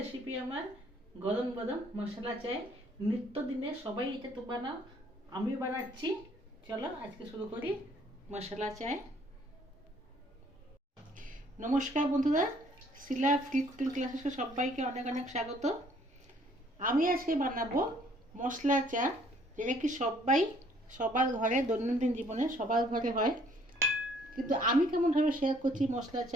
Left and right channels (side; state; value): both; normal; correlation 0.61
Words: আমার গরম গরম মশলা চাই। নিত্যদিনে সবাই এটা তো বানাও, আমিও বানাচ্ছি। চলো আজকে শুরু করি মশলা চাই। নমস্কার বন্ধুরা, শিলা ফ্রি কুকিং ক্লাসে সবাইকে অনেক অনেক স্বাগত। আমি আজকে বানাবো মশলা চা, যেটা কি সবার ঘরে দৈনন্দিন জীবনে সবার ঘরে হয়, কিন্তু আমি কেমনভাবে শেয়ার করছি মশলা